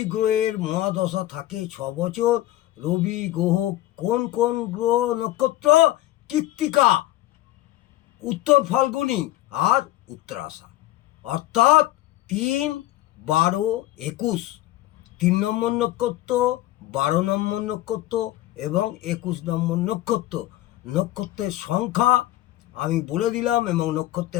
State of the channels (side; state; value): right; quieter; 15.7 dB